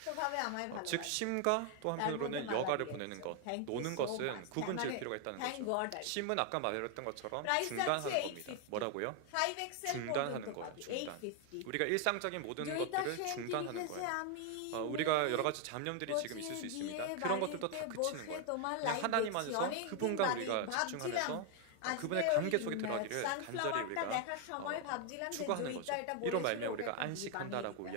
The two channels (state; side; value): different; both; correlation 0.00